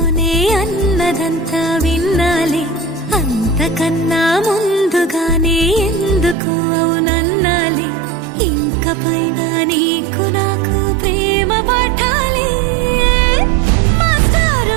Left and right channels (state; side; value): drops out; left; at 6.4 s